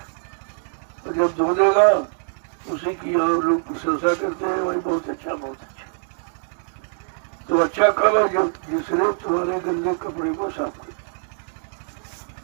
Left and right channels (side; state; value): left; silent; digital silence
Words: तो जब धो देगा उसी की यहाँ लोग प्रशंसा करते हैं, वही बहुत अच्छा, बहुत अच्छा। तो अच्छा कब है? जब जिसने तुम्हारे गंदे कपड़े को साफ कर